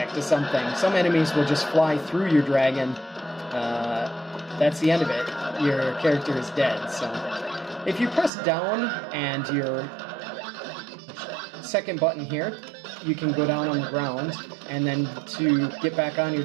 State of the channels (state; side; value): drops out; left; at 8.3 s